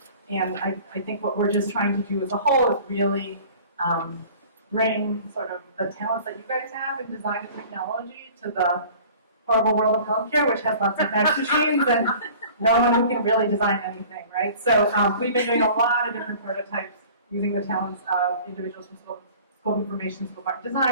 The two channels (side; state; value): both; inverted; correlation -0.46